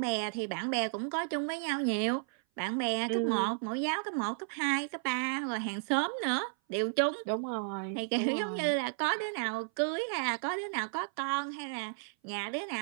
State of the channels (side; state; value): left; silent; 56 dB below the other